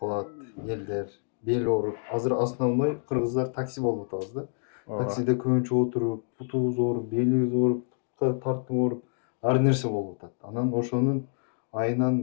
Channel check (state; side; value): silent; right; 60 dB below the other